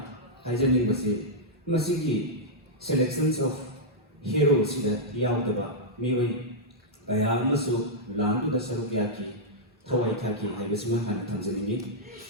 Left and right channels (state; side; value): normal; both; correlation -0.07